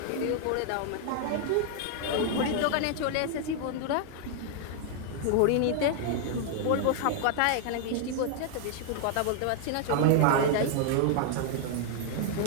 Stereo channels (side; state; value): both; different; correlation -0.01